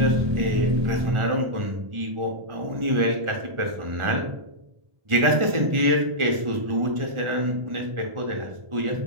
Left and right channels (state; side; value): late; left; 1.4 ms